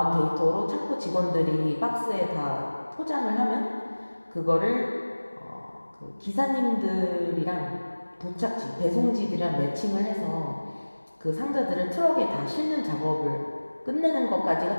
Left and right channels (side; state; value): both; inverted; correlation -1.00